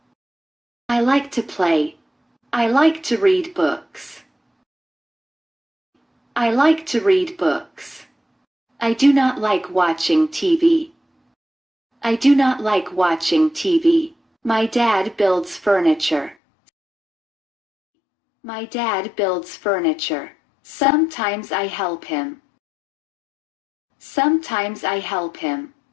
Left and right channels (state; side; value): drops out; right; at 16.4 s